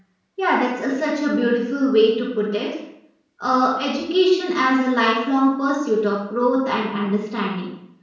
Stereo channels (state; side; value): identical; both; correlation 1.00